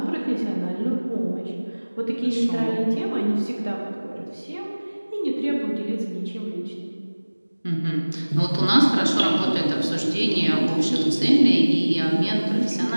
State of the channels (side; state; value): both; inverted; correlation -1.00